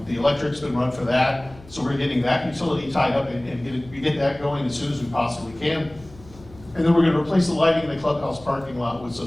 The electric's been run for that, so we're getting that utility tied up and get that going as soon as we possibly can. And then we're going to replace the lighting in the clubhouse parking lot with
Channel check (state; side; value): noise; left; hum, 21 dB below the sound